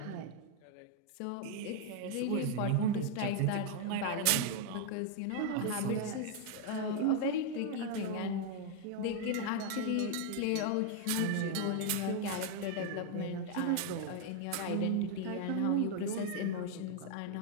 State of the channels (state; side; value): different; both; correlation 0.00